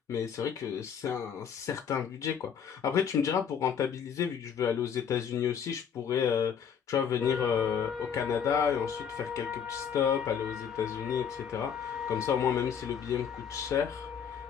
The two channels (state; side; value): quieter; right; 7.6 dB